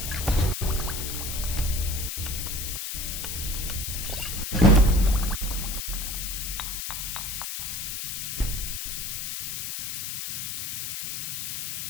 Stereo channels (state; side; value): noise; left; hiss, 4 dB below the sound